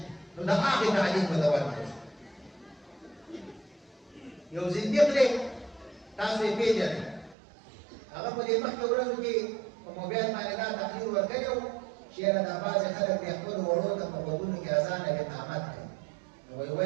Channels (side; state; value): left; drops out; at 7.4 s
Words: نو د هغه تعلیم په دوام کې یو زنديق له تاسو یې پیژنئ هغه په دې مخکې ورځو کې په موبایل باندې دا تقریر ورکړو چې دا بعضې خلک د خپل وړو ته په غوږونو کې اذان او اقامت کوي نو وایي